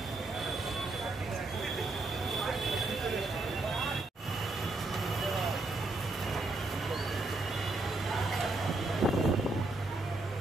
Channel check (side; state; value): left; quieter; 3.0 dB